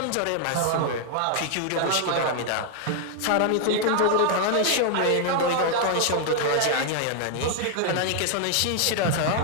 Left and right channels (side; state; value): both; different; correlation 0.00